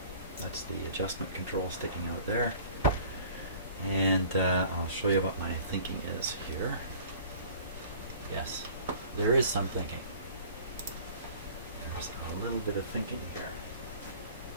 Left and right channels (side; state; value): both; inverted; correlation -0.48